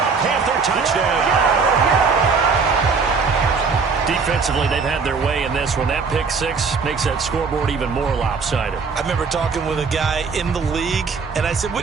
a Panther touchdown. Defensively, they've had their way in this one. That pick 6 makes that scoreboard even more lopsided. I remember talking with a guy in the league, and I said, what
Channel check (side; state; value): left; quieter; 5.0 dB